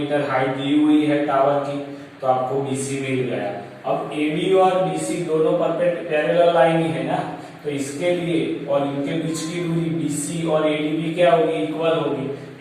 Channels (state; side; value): identical; both; correlation 1.00